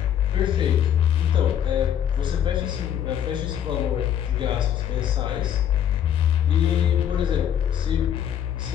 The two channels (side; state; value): right; quieter; 9.8 dB